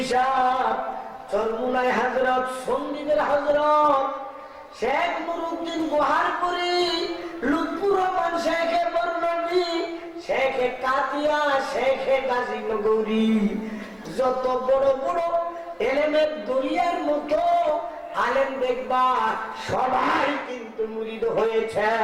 সাহেব, চরমুনাই হযরত, সন্দ্বীপের হযরত শেখ নুরুদ্দিন গোহারপুরি, লুৎফুর রহমান শেখে বর্ণবী, শেখে কাতিয়া, শেখে গাজীনগরী, যত বড় বড় এলেমের দরিয়ার মতো আলেম দেখবা, সবাই কিন্তু মুরিদ হয়েছে।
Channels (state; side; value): identical; both; correlation 1.00